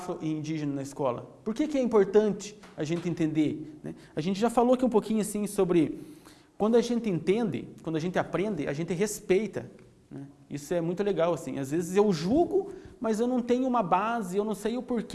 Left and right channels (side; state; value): both; identical; correlation 1.00